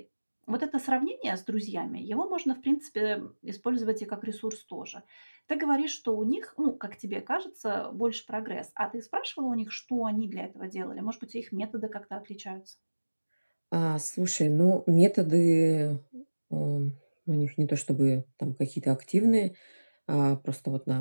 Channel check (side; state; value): both; inverted; correlation -1.00